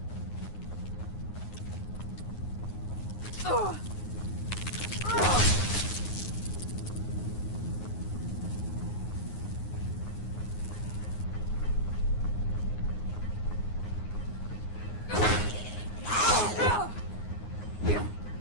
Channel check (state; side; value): late; right; 9.6 ms